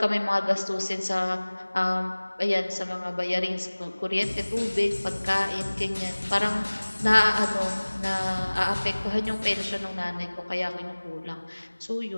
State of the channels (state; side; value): inverted; both; correlation -1.00